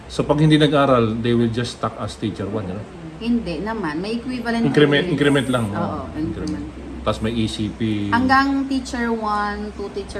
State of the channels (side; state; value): both; identical; correlation 1.00